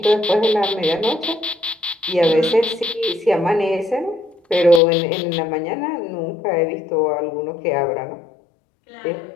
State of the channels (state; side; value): drops out; right; at 4.8 s